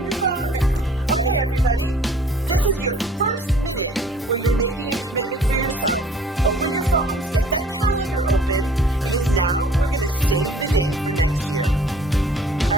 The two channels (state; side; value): normal; both; correlation 0.54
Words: your phones. Okay, everybody. This is your first minute where you're making a commitment for yourself. Open your phones, get that calendar open, because now we're going to save the date for next year. All